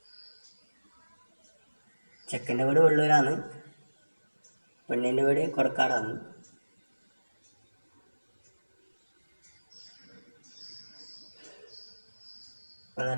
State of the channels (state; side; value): inverted; both; correlation -1.00